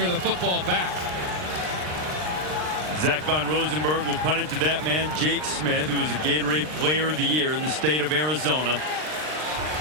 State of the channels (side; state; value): left; late; 39 ms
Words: the football back. Zach Von Rosenberg will punt it to that man, Jake Smith, who was a Gatorade Player of the Year in the state of Arizona.